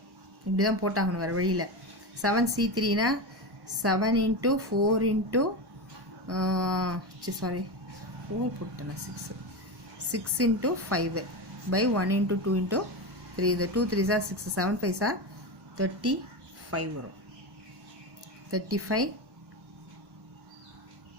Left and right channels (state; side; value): late; left; 1.1 ms